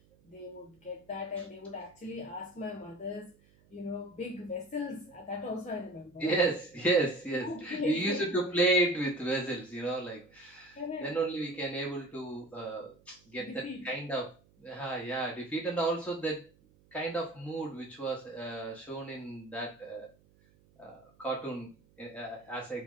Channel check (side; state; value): right; noise; hum, 29 dB below the sound